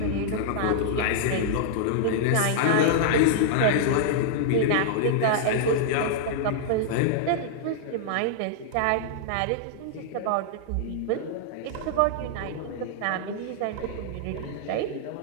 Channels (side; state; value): both; different; correlation -0.01